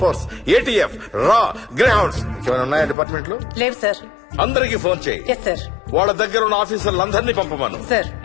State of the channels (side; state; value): right; drops out; at 3.0 s